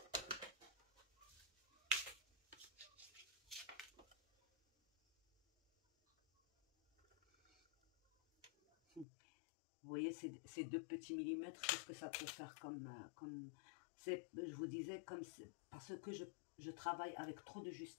Vous voyez ces 2 petits millimètres, qu'est-ce que ça peut faire comme je vous disais, parce que je travaille avec trop de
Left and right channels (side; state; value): right; drops out; at 9.1 s